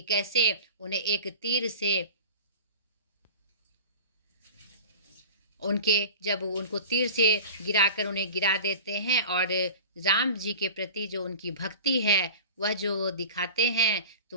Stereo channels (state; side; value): inverted; both; correlation -0.36